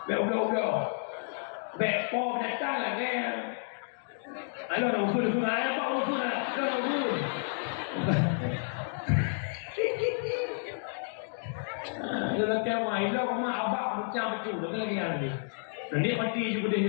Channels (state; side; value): silent; right; digital silence